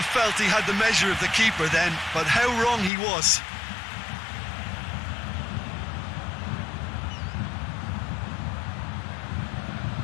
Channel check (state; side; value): drops out; right; at 2.9 s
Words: felt he had the measure of the keeper then, but how wrong he was.